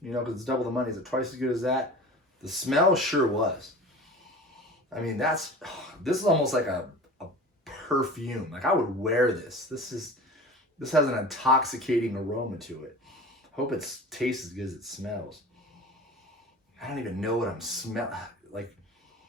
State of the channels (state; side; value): normal; both; correlation 0.37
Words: You know, because it's double the money. Is it twice as good as that? The smell sure was. I mean, this is almost like a perfume. Like I would wear this. This has an intoxicating aroma to it. Hope it tastes as good as it smells. I don't even know what I'm smelling. Like